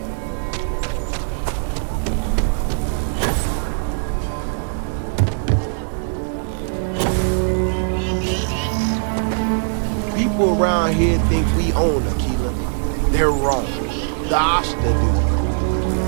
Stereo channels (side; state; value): left; silent; digital silence